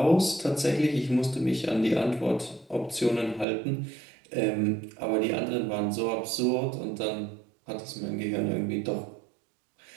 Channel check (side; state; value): left; drops out; at 3.5 s